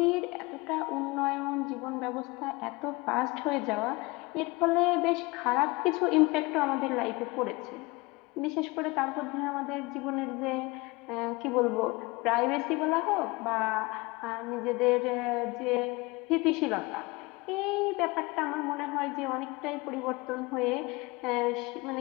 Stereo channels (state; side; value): quieter; right; 24.2 dB